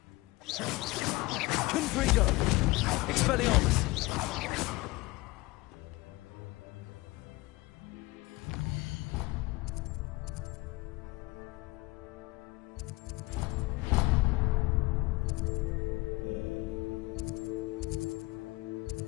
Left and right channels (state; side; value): quieter; right; 21.8 dB